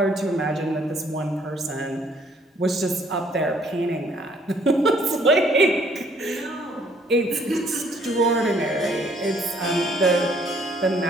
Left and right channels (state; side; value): normal; both; correlation 0.63